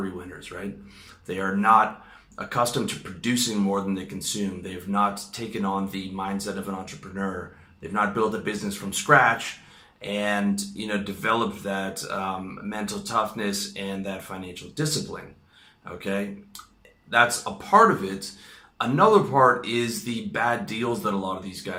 winners, right? They are not accustomed to producing more than they consume. They've not taken on the mindset of an entrepreneur. They've not built a business from scratch and developed that mental toughness and that financial discipline. Okay, that's a part of it. Another part is the bad deals that a lot of these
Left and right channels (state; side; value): identical; both; correlation 1.00